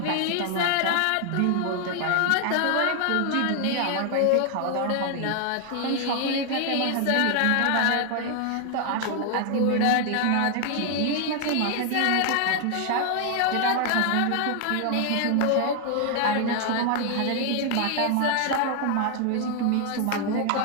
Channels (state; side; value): different; both; correlation 0.00